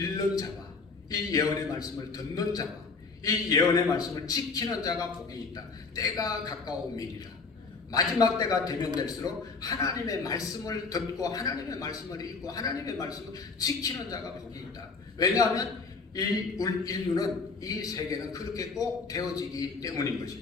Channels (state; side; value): quieter; right; 4.4 dB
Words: 자와 이 예언의 말씀을 듣는 자와 이 예언의 말씀을 지키는 자가 복이 있다. 때가 가까움이니라. 마지막 때가 되면 될수록 하나님의 말씀을 듣고 하나님의 말씀을 읽고 하나님의 말씀을 지키는 자가 복이 있다. 왜냐하면 이 인류는 이 세계는 그렇게 꼭 되어지기 때문인